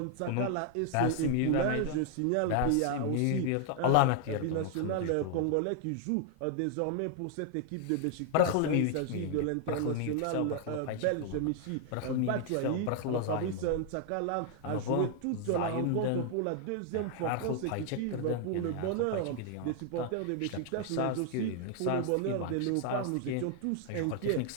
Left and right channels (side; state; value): both; different; correlation 0.00